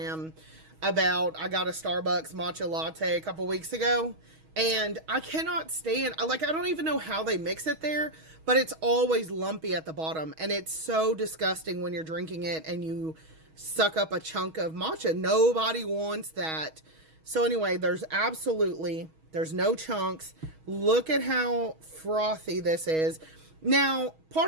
about, I got a Starbucks matcha latte a couple weeks ago, and I cannot stand, like, I don't even know how they mix it there, but it's always lumpy at the bottom, and it's so disgusting when you're drinking it and you suck up a chunk of matcha. Nobody wants that. So anyway, there's absolutely There's no chunks. Look at how frothy this is. Now,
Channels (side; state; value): left; late; 6.3 ms